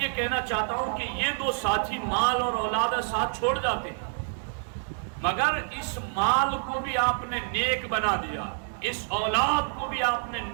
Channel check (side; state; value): left; silent; digital silence